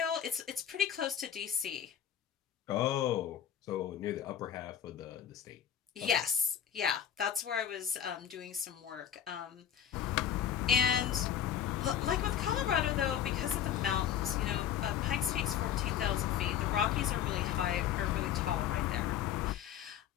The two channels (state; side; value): quieter; right; 9.6 dB